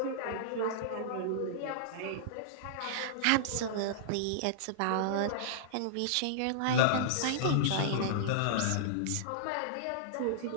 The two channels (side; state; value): both; different; correlation -0.02